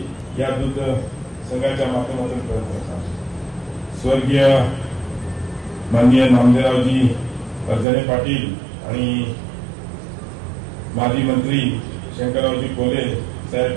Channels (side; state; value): left; drops out; at 7.9 s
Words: या दूध संघाच्या माध्यमातून प्रयत्न करतात। स्वर्गीय माननीय नामदेवरावजी परजने पाटील आणि माजी मंत्री शंकररावजी कोले